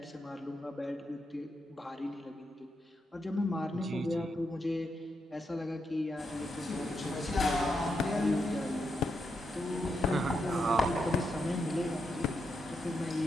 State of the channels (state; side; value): normal; both; correlation 0.83